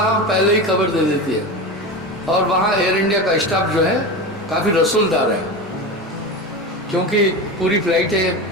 पहले ही खबर दे देती है। और वहाँ एयर इंडिया का स्टाफ जो है काफ़ी रसूलदार है, क्योंकि पूरी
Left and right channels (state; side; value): normal; both; correlation 0.25